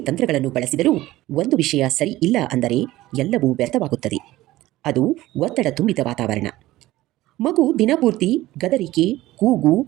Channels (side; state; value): left; quieter; 16.7 dB